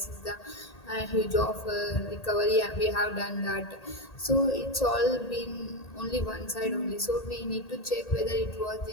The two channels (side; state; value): right; late; 1.8 ms